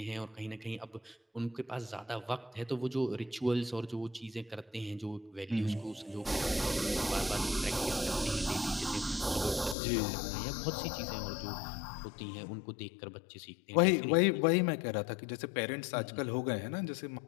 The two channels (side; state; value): right; drops out; at 9.8 s